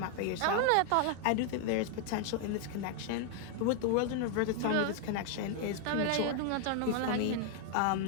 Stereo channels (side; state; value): both; different; correlation 0.00